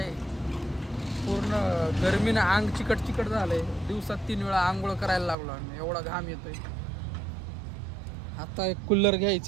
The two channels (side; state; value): left; drops out; at 5.4 s